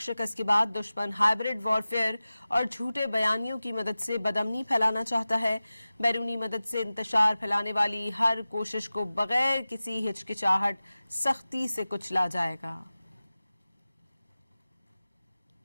شکست کے بعد دشمن ہائبرڈ وارفیئر اور جھوٹے بیانیوں کی مدد سے بدامنی پھیلانا چاہتا ہے۔ بیرونی مدد سے انتشار پھیلانے والی ہر کوشش کو بغیر کسی ہچکچاہٹ سختی سے کچلا جائے گا۔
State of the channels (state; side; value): inverted; both; correlation -0.96